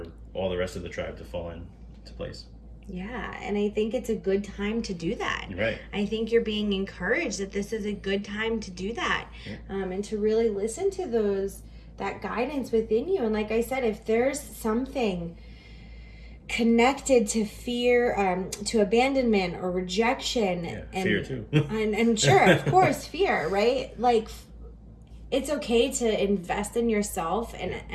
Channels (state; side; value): identical; both; correlation 1.00